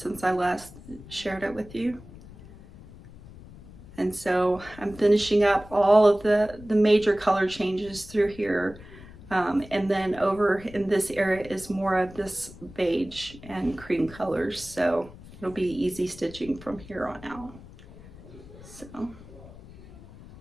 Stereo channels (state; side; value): noise; left; rumble, 18 dB below the sound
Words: I last shared it with you. And so I'm finishing up all of the major color changes through here. And then over in this area is more of this beige and cream colors. So it'll be easy stitching from here on out. So,